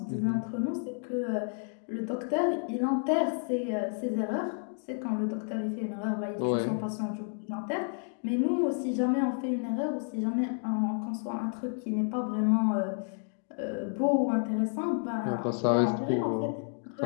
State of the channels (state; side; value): silent; right; 57 dB below the other